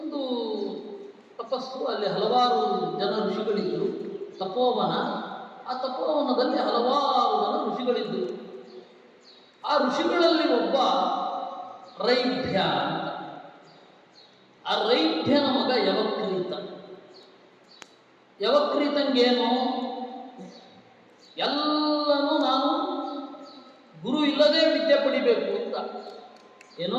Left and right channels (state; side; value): identical; both; correlation 1.00